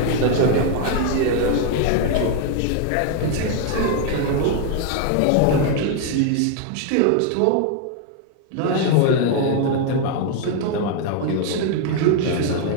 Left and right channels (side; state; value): both; different; correlation 0.00